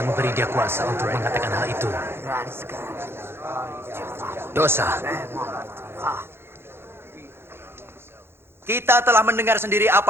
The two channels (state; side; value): late; left; 0.11 ms